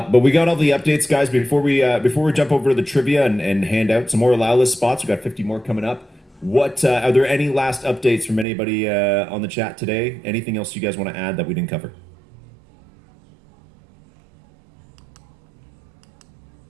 we got all the updates, guys. Before we jump over to the trivia and hand out some more allow list spots, we got 50 more coming up. What are there any last updates from anybody on the chat today? Anything else you guys want to add that we didn't cover?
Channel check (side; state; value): left; drops out; at 8.5 s